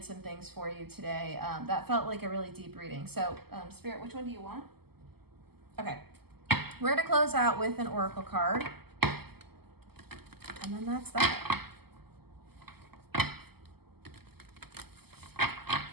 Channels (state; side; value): late; left; 0.96 ms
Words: some things for you today. That felt like a really deep reading. So Spirit, which one do you want? Okay. We're going to close out with an oracle card. And then that's that.